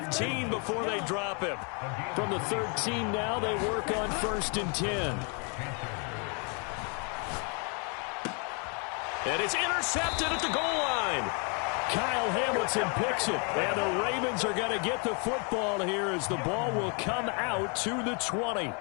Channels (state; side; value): quieter; right; 36.6 dB